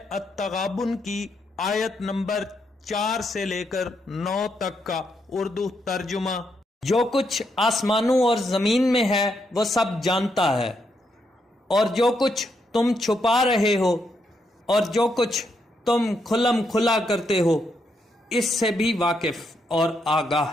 التغابن کی آیت نمبر 4 سے لے کر 9 تک کا اردو ترجمہ۔ جو کچھ آسمانوں اور زمین میں ہے وہ سب جانتا ہے، اور جو کچھ تم چھپا رہے ہو اور جو کچھ تم کھلم کھلا کرتے ہو اس سے بھی واقف اور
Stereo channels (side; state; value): both; normal; correlation 0.79